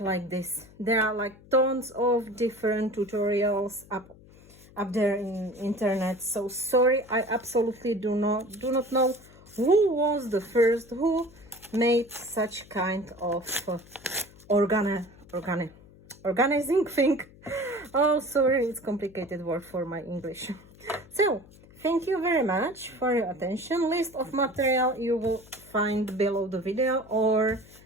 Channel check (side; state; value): left; noise; hum, 23 dB below the sound